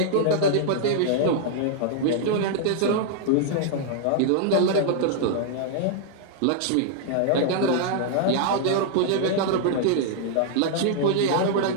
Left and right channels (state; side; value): different; both; correlation -0.01